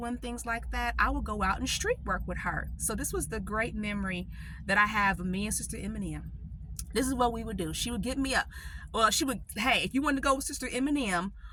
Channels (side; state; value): both; identical; correlation 1.00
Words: and things like that, I would go out and street work with her. So this was the great memory that I have of me and Sister Eminem. This is what we would do. She would get me up. Well, hey, if you wanted to go with Sister Eminem